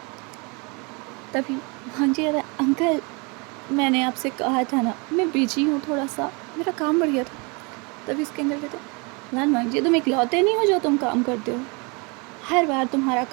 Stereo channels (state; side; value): quieter; left; 30.5 dB